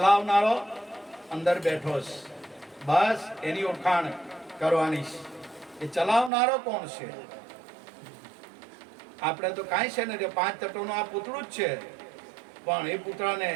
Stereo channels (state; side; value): drops out; left; at 6.3 s